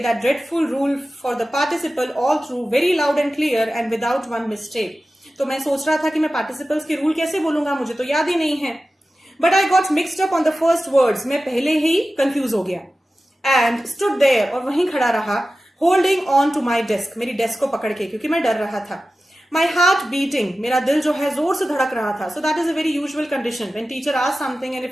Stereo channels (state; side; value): normal; both; correlation 0.95